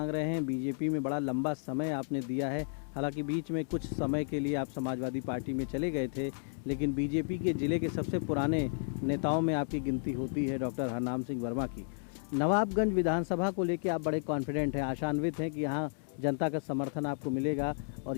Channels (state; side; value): silent; right; digital silence